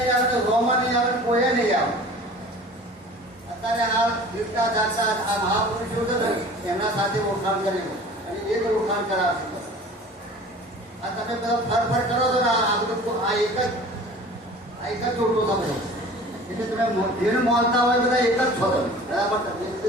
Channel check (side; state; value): both; normal; correlation 0.43